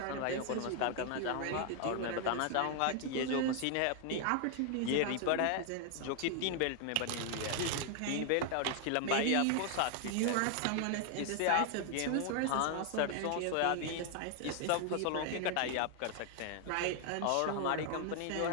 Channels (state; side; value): different; both; correlation 0.00